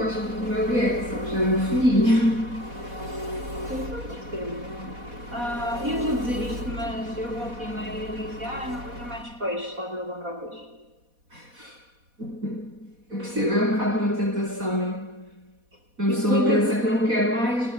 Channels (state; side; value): late; left; 4.1 ms